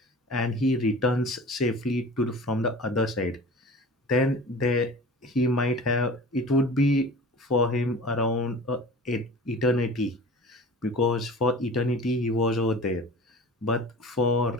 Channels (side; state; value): both; normal; correlation 0.39